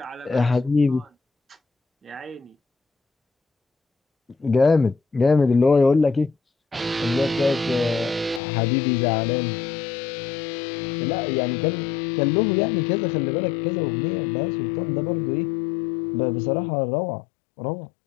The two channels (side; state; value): right; drops out; at 8.4 s